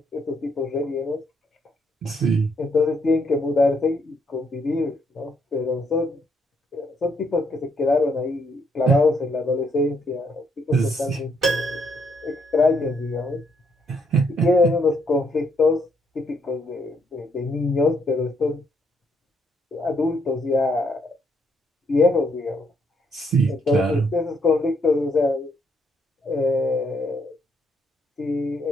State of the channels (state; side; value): normal; both; correlation 0.73